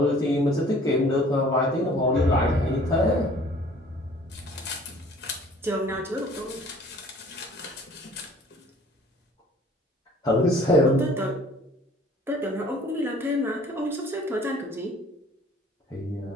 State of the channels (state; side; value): normal; both; correlation 0.52